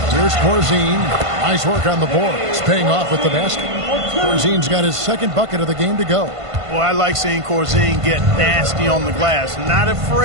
Here's Corzine. Nice work on the board. It's paying off with the basket. Corzine's got his second bucket of the game to go. Well, I like seeing Corzine get nasty on the glass. Not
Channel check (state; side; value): late; left; 1.5 ms